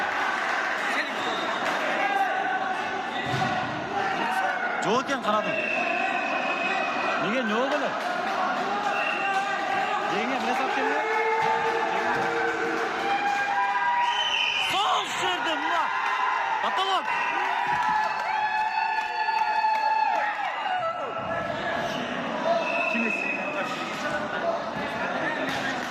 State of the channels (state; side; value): identical; both; correlation 1.00